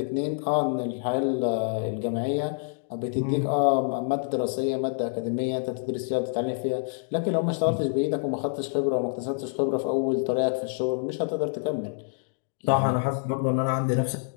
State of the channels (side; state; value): right; silent; digital silence